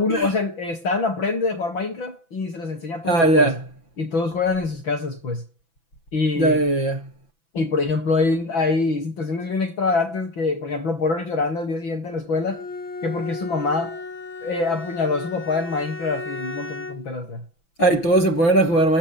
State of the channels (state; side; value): late; right; 6.0 ms